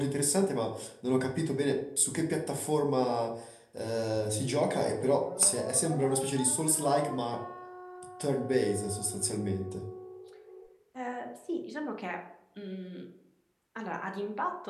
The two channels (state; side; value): identical; both; correlation 1.00